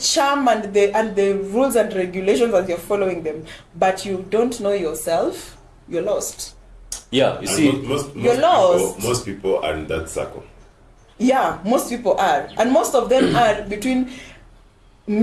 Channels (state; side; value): identical; both; correlation 1.00